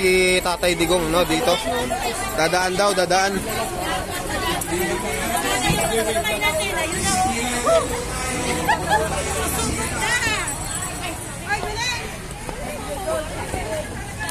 Tatay Digong, no, dito. Dadaan daw, dadaan.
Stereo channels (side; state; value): both; identical; correlation 1.00